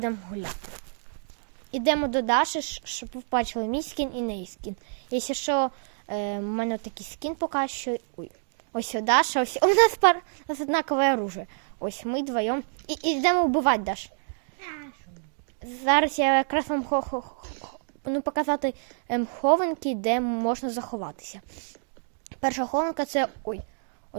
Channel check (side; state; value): left; silent; digital silence